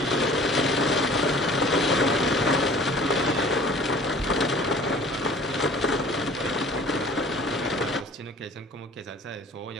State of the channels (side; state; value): both; normal; correlation 0.48